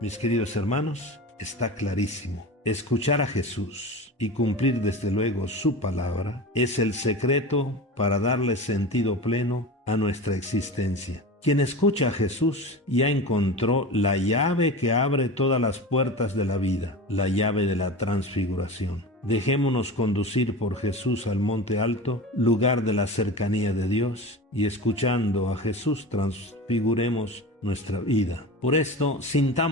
Mis queridos hermanos, está clarísimo. Escuchar a Jesús y cumplir desde luego su palabra es el secreto para darle sentido pleno a nuestra existencia. Quien escucha a Jesús ya encontró la llave que abre todas las puertas de la vida, la llave de la transfiguración. Dejémonos conducir por Jesús al monte alto, lugar de la cercanía de Dios, y escuchando a Jesús transfiguremos nuestra vida. Por esto,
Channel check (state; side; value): normal; both; correlation 0.30